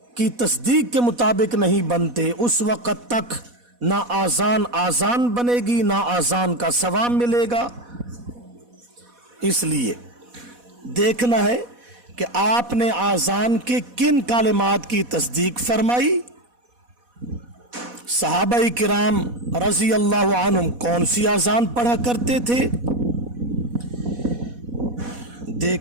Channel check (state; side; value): late; left; 4.1 ms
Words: की तस्दीक के मुताबिक नहीं बनते, उस वक़्त तक ना आज़ान बनेगी, ना आज़ान का सवाब मिलेगा। इसलिए देखना है कि आपने आज़ान के किन कालिमात की तस्दीक फरमाई, सहाबाई किराम रज़ी अल्लाह अन्हुम कौन सी आज़ान पढ़ा करते थे।